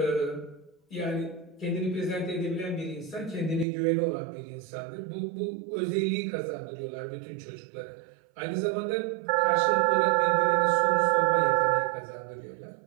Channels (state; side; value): drops out; left; at 3.7 s